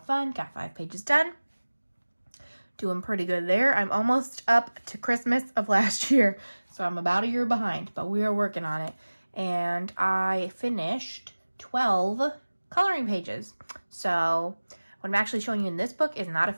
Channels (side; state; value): both; inverted; correlation -1.00